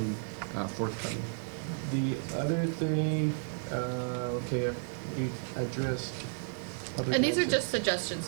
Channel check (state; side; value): silent; left; digital silence